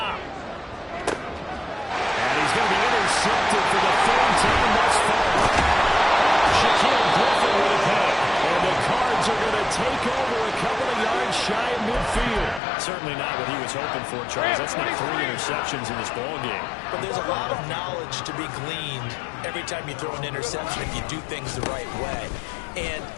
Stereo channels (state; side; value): drops out; right; at 12.6 s